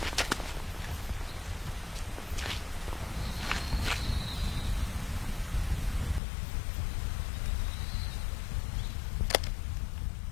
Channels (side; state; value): right; drops out; at 6.2 s